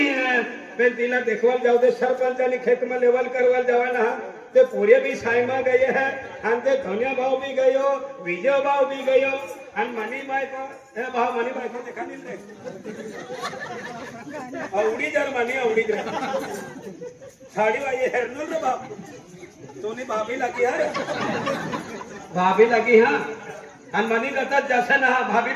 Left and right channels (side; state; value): both; identical; correlation 1.00